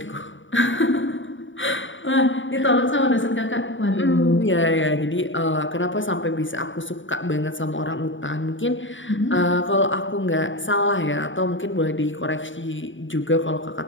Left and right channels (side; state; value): right; late; 0.56 ms